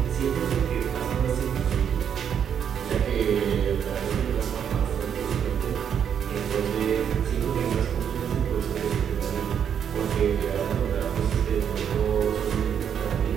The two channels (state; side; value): quieter; left; 8.2 dB